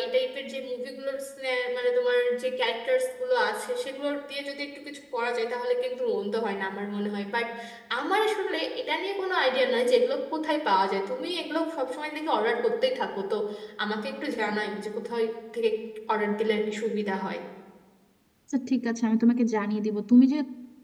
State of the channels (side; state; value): both; identical; correlation 1.00